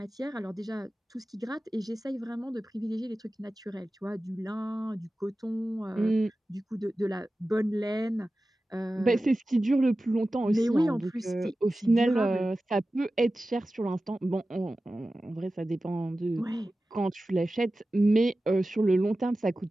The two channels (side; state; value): both; normal; correlation 0.95